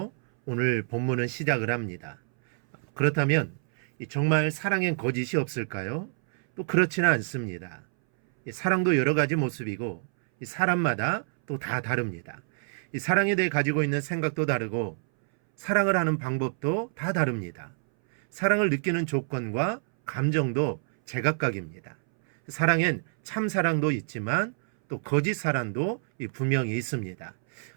오늘 본문은 시작을 합니다. 그렇다면 정말 사랑엔 거짓이 없을까요? 또 그렇지는 않습니다. 사랑도 여러 가지 모습이고 사람마다 또 다 다릅니다. 사랑에 대해 가지고 있는 생각도 다르고 사랑을 하는 방법도 다 다릅니다. 사랑을 느끼는 조건과 감정도 제각각입니다. 사랑엔 참 사랑도 있지만 또 거짓 사랑도 분명히 있습니다.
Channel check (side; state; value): left; silent; 60 dB below the other